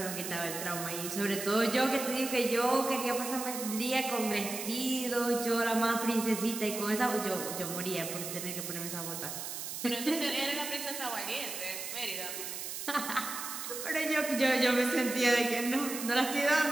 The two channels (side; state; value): right; noise; hiss, 6 dB below the sound